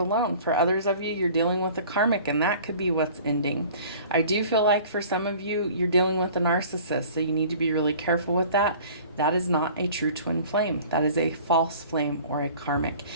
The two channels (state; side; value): inverted; both; correlation -0.47